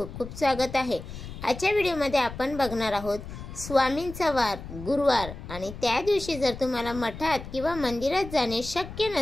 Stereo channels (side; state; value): left; noise; rumble, 12 dB below the sound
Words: खूप स्वागत आहे। आजच्या व्हिडिओमध्ये आपण बघणार आहोत स्वामींचा वार गुरुवार आणि त्या दिवशी जर तुम्हाला मठात किंवा मंदिरात जाणे शक्य